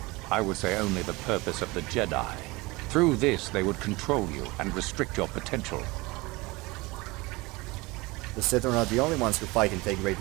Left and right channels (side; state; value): left; quieter; 23.1 dB